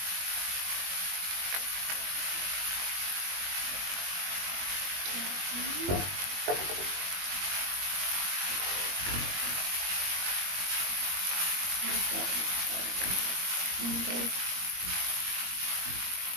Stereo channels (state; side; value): late; left; 21 ms